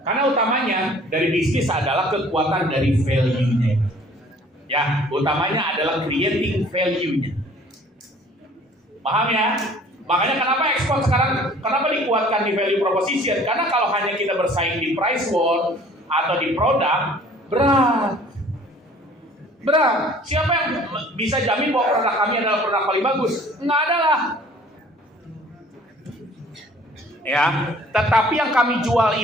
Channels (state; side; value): normal; both; correlation 0.52